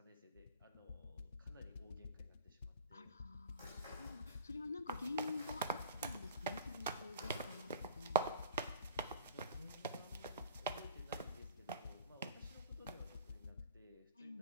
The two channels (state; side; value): inverted; both; correlation -0.40